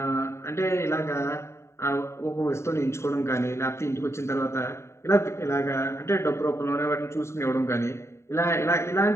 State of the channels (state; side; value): late; right; 0.13 ms